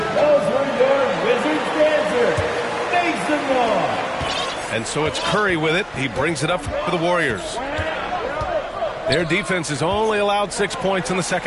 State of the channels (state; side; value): identical; both; correlation 1.00